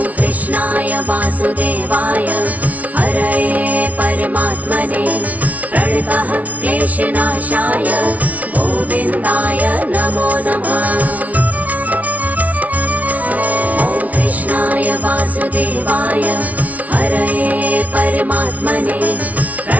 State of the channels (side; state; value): left; late; 0.071 ms